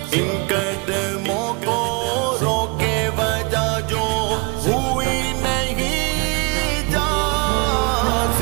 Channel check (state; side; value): quieter; left; 29.0 dB